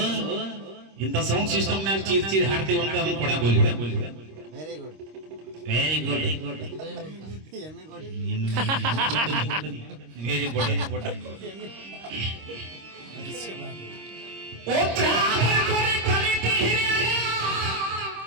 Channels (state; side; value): late; left; 26 ms